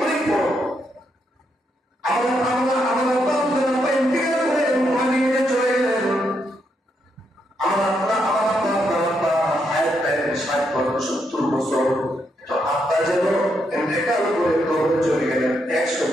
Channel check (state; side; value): normal; both; correlation 0.79